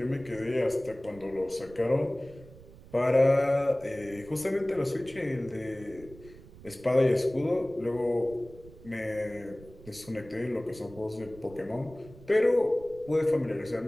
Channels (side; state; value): right; noise; rumble, 20 dB below the sound